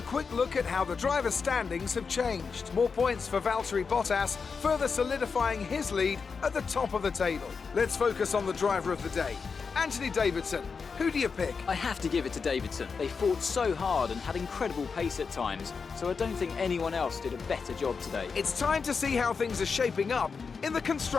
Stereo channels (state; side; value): quieter; right; 5.3 dB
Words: quick look at how the driver standings have changed. More points for Valtteri Bottas, further solidifying his lead at the top of the table. Let's focus on the driver of the day, Anthony Davidson. Who do you pick? I have to give it to Davidson. They fought so hard and had incredible pace at times, so I don't think anyone else did a better job today. It's time to see how things are shaping up in the